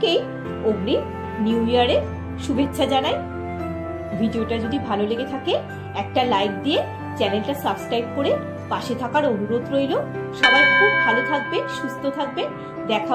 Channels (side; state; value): both; identical; correlation 1.00